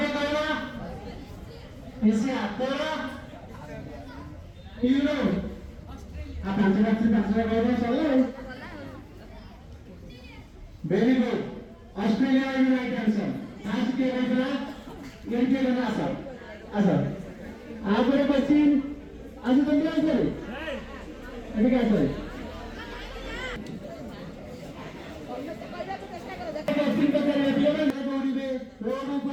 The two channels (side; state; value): both; identical; correlation 1.00